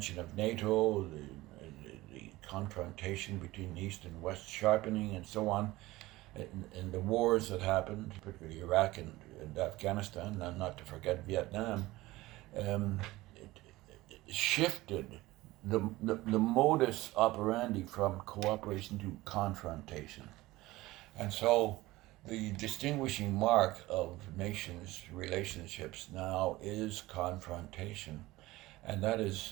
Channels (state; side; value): quieter; left; 18.7 dB